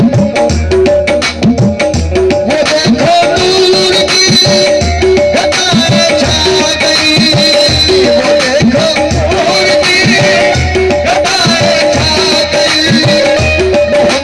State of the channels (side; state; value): both; identical; correlation 1.00